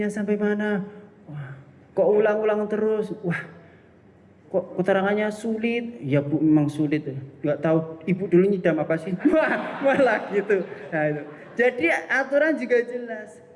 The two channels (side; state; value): both; identical; correlation 1.00